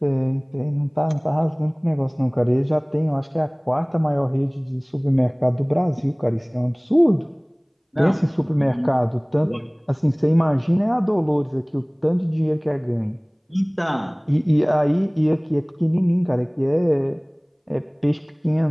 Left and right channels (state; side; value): identical; both; correlation 1.00